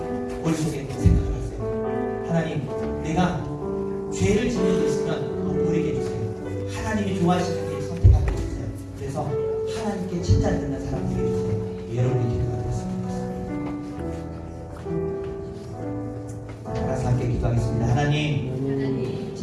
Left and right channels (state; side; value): identical; both; correlation 1.00